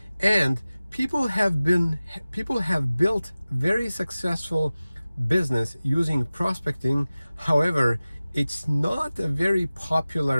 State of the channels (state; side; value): inverted; both; correlation -0.97